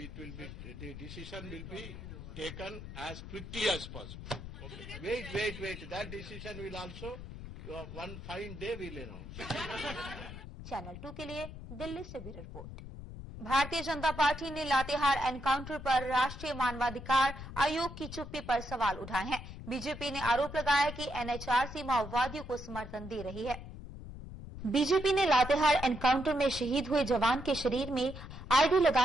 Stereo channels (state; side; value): noise; left; rumble, 11 dB below the sound